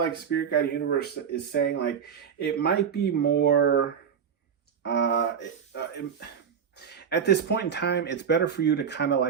Spirit Guide Universe is saying like it might be more at this point in time, it's better for you to kind of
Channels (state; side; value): quieter; left; 7.4 dB